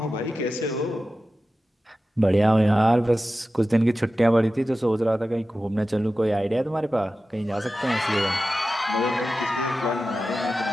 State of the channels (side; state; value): both; normal; correlation 0.94